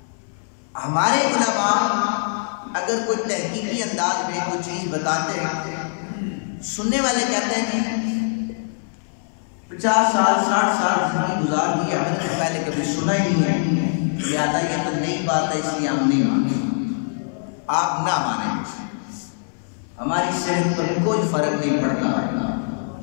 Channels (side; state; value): right; silent; 61 dB below the other